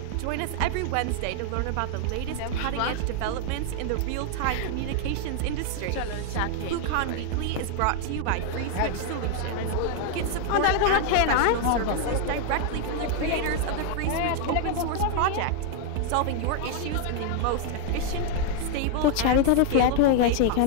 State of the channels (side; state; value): both; different; correlation 0.00